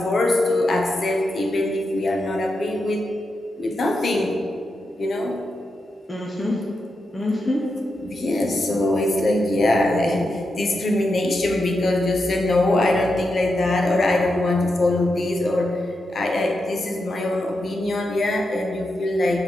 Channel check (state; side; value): normal; both; correlation 0.87